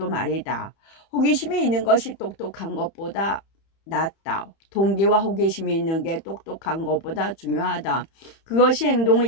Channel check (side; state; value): right; late; 31 ms